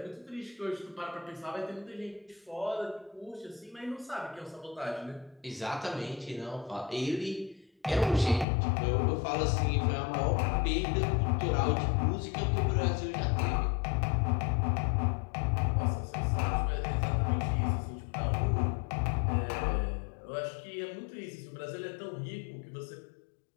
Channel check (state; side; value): drops out; right; at 8.5 s